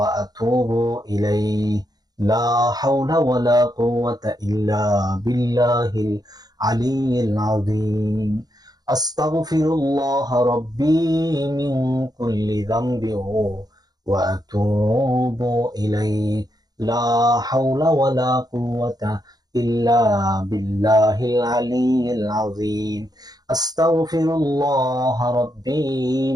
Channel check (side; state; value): left; late; 0.19 ms